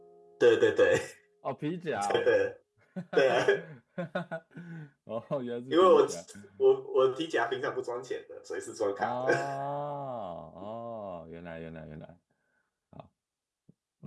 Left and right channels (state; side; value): identical; both; correlation 1.00